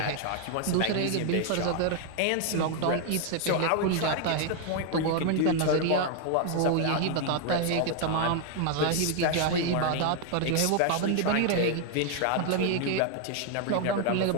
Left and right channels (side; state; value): both; different; correlation 0.01